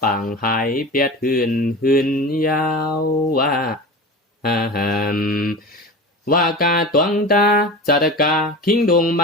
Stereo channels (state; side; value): normal; both; correlation 0.31